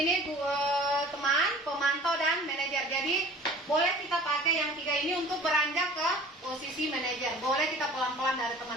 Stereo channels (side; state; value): both; normal; correlation 0.46